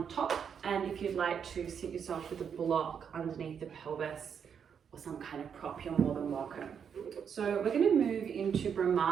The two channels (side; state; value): left; quieter; 7.4 dB